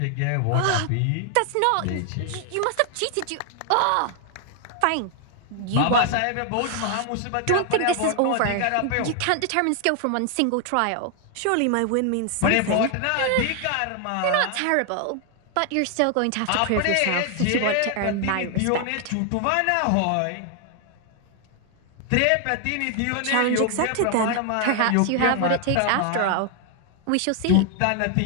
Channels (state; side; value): different; both; correlation 0.00